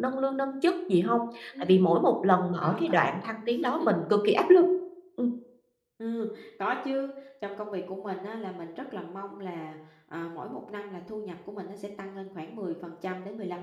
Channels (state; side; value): identical; both; correlation 1.00